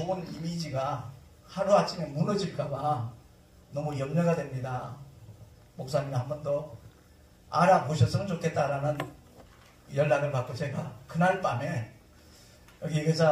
이미지가 하루아침에 무너질까봐 너무 염려가 됩니다. 목사님이 한 번 더 알아보셨으면 좋겠다라는 연락을 받고 제가 그날 밤에 여기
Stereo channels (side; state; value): both; identical; correlation 1.00